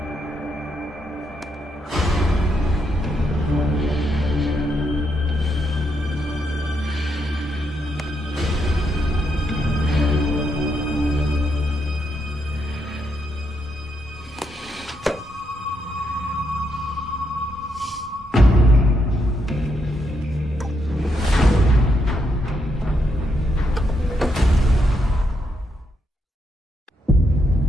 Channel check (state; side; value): normal; both; correlation 0.79